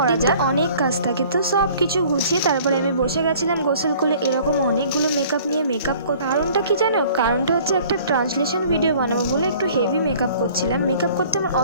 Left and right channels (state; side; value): inverted; both; correlation -0.52